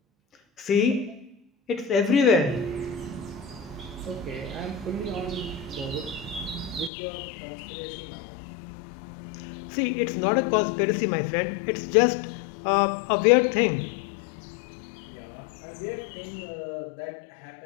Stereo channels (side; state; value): right; drops out; at 6.9 s